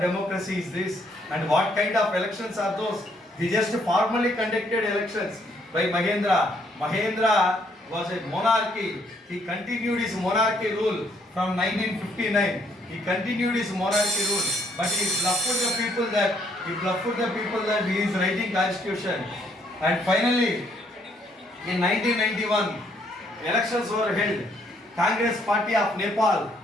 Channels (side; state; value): both; normal; correlation 0.69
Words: democracy is this? And what kind of elections are those? They just formally conducted elections by Mahendra. Mahendra was a monarchy. He continued his monarchy rule from 1959. He continued his monarchy rule, but he bluffed the people that he is writing constitution. And finally, in 1991, elections were held. Congress Party of Nepal